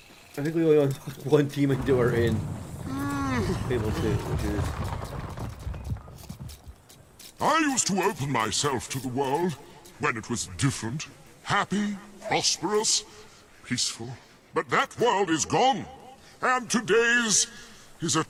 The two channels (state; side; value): identical; both; correlation 1.00